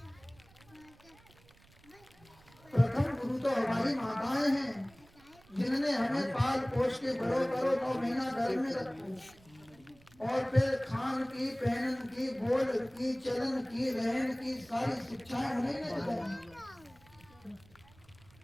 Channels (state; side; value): noise; right; rumble, 27 dB below the sound